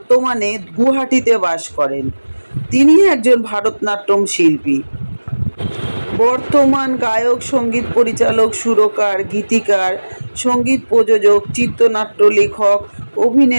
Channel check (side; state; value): both; inverted; correlation -1.00